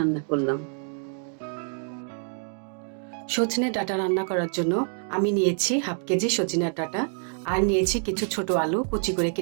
করলাম। সজনে ডাঁটা রান্না করার জন্য আমি নিয়েছি হাফ কেজি সজনের ডাঁটা, আর নিয়েছি কিছু ছোট আলু কুচি করে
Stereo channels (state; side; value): silent; left; 60 dB below the other